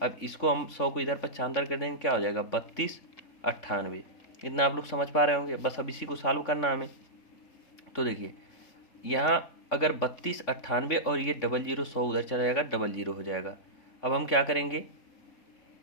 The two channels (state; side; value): late; right; 3.6 ms